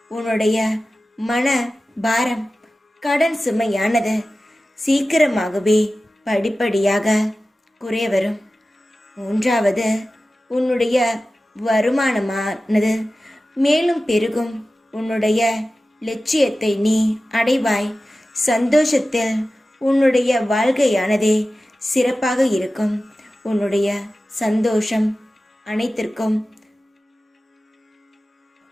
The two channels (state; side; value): normal; both; correlation 0.95